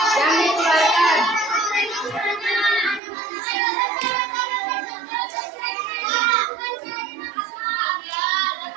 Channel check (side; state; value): left; drops out; at 3.0 s